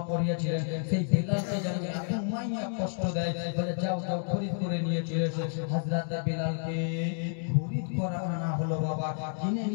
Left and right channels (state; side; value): silent; right; digital silence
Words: পড়িয়েছিলেন সেই বেলালকে যেন এত মাইয়া কষ্ট দেয় বলে যাও যাও খরিদ করে নিয়ে চলে এসো হযরতে বেলালকে খরিদ করা আনা হলো বাবা কিনে